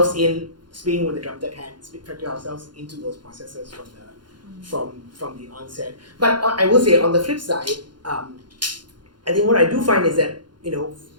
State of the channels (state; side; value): late; left; 0.71 ms